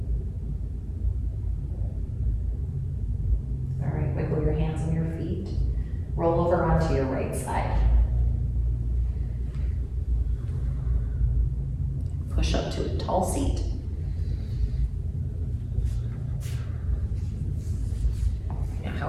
All right, wiggle your hands and your feet. Roll over onto your right side. Push up to a tall seat.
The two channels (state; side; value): identical; both; correlation 1.00